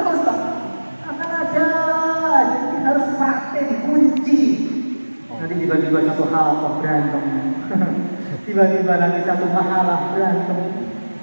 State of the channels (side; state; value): both; inverted; correlation -1.00